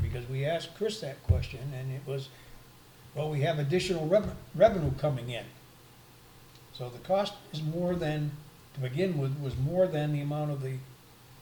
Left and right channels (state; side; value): identical; both; correlation 1.00